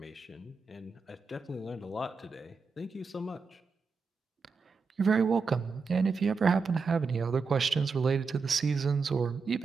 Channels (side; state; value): left; quieter; 4.9 dB